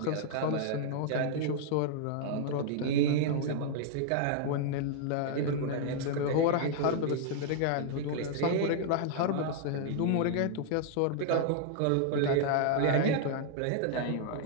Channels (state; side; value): different; both; correlation -0.01